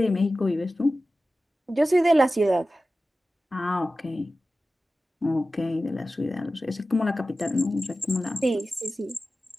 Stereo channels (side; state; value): both; normal; correlation 0.95